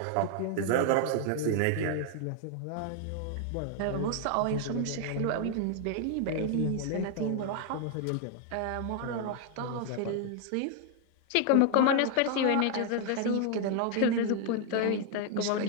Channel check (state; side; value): different; both; correlation 0.00